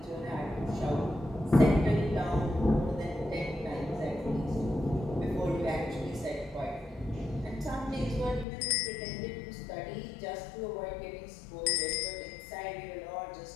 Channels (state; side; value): drops out; right; at 8.5 s